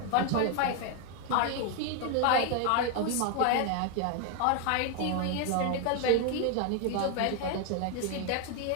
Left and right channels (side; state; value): both; different; correlation 0.01